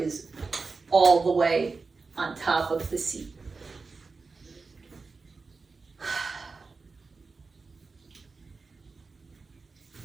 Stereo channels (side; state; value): left; quieter; 4.2 dB